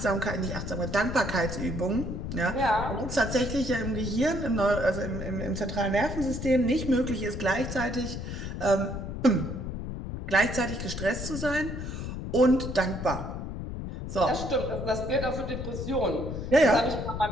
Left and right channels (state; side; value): noise; left; rumble, 6 dB below the sound